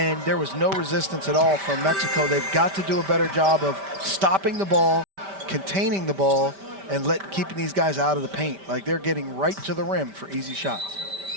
there was no resistance at all from Mexico. They've got to do a better job of stopping the ball, containing the ball and keeping these guys out of the paint. Like, they're getting right to the rim for easy shots.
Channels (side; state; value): left; late; 5.1 ms